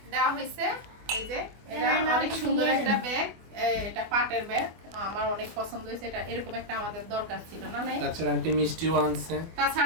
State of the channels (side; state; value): left; late; 24 ms